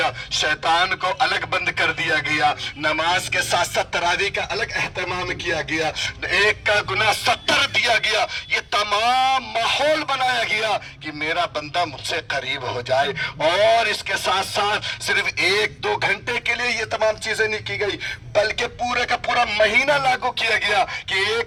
शैतान को अलग बंद कर दिया गया, नमाज के साथ साथ तरावी का अलग एहतमाम किया गया, एक का गुनाह 70 दिया गया। ये तमाम माहौल बनाया गया कि मेरा बंदा मुझसे करीब हो जाए। और इसके साथ साथ सिर्फ 1-2 घंटे के लिए ये तमाम चीजें नहीं की गई, बल्कि पूरे का पूरा महीना लागू किया गया कि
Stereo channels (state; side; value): identical; both; correlation 1.00